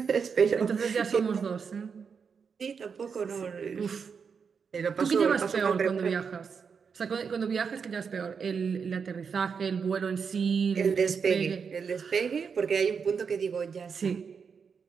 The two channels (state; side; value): quieter; left; 6.1 dB